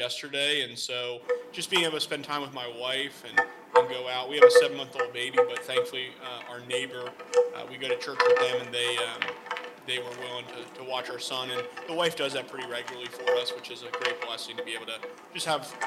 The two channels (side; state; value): both; identical; correlation 1.00